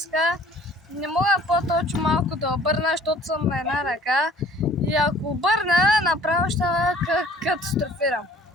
Не мога по-точно малко да обърна, защото съм на една ръка. И ако обърна, направо ще катастрофирам.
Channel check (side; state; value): both; normal; correlation 0.53